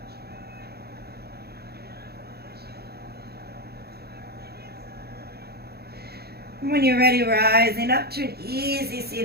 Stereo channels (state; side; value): late; left; 0.46 ms